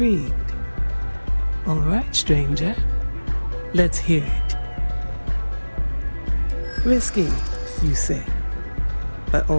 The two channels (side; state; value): both; inverted; correlation -1.00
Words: All right, stranger. Let's hear it. Risky, you say? By